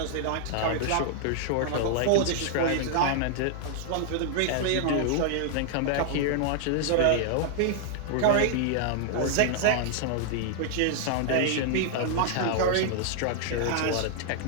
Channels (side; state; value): both; different; correlation -0.01